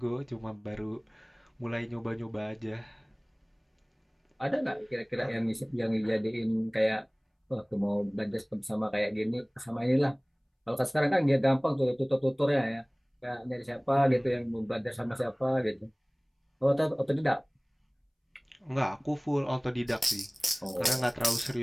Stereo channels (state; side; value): identical; both; correlation 1.00